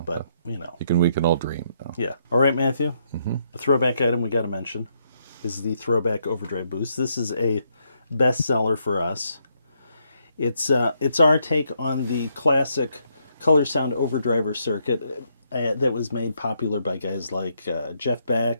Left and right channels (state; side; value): inverted; both; correlation -0.75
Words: But you know, we can all dream. yeah. All right, Matthew. A throwback item we got to mention is the Throwback Overdrive Boost. This is a bestseller for us. It's our take on the classic Color Sound Overdriver circuit that was made popular by guys like Jeff